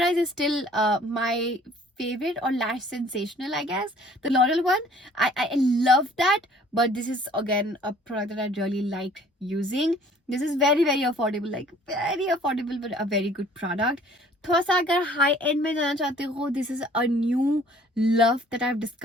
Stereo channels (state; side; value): normal; both; correlation 0.54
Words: is still my favorite, or Lash Sensational I guess, the L'Oreal one. I love that, but this is again a product that I really like using. This is very affordable, like very affordable, but a very good product. थोड़ा सा अगर high and में जाना चाहते हो, this is a new love that I have